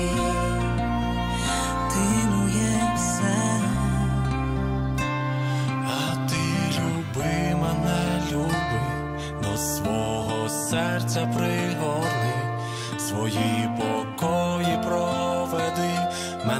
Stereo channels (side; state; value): both; identical; correlation 1.00